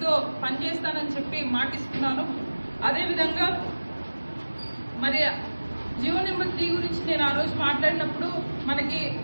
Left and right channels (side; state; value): both; inverted; correlation -1.00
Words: పనిచేస్తానని చెప్పి మాటిస్తున్నాను. అదేవిధంగా మరి జీవో నెంబర్ 3 గురించి నేను ఆ రోజు మాట్లాడినప్పుడు మనకి